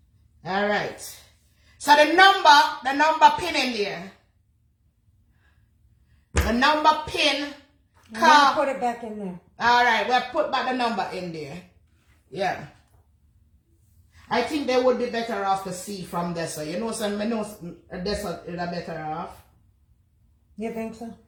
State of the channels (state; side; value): identical; both; correlation 1.00